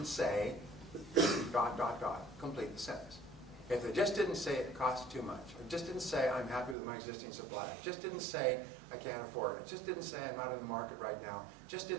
say ... complete the sentence. If they just didn't say it costs too much, or just didn't say I'm happy with my existing supplier, just didn't say I can't afford it, just didn't say I'm not in the market right now, just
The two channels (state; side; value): drops out; left; at 6.8 s